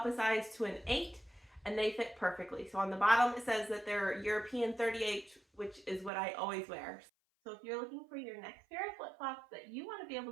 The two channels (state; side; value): drops out; left; at 6.1 s